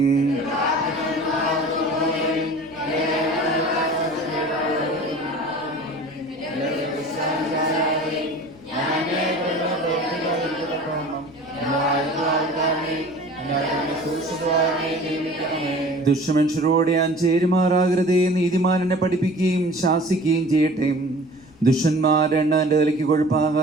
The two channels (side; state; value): left; noise; rumble, 28 dB below the sound